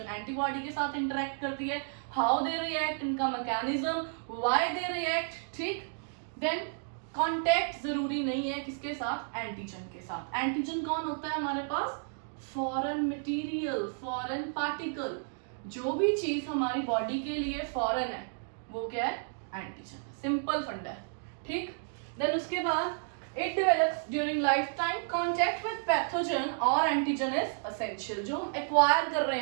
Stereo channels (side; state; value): left; silent; digital silence